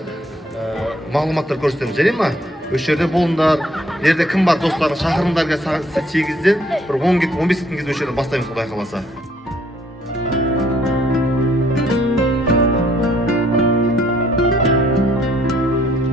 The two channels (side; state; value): both; normal; correlation 0.65